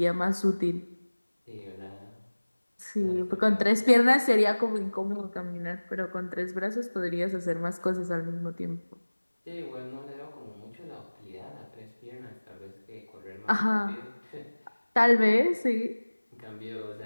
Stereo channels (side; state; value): both; inverted; correlation -1.00